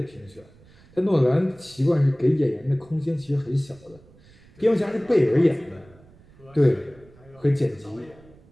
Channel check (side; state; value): right; noise; rumble, 26 dB below the sound